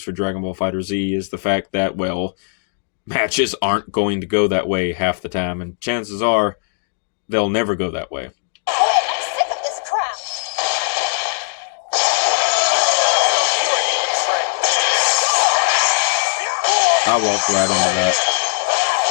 Dragon Ball Fighter Z, is the fact that, well, matches aren't going to go that way half the time, and chances are they'll never go that way. I'm sick of this crap. I walked right into that.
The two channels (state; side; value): silent; right; digital silence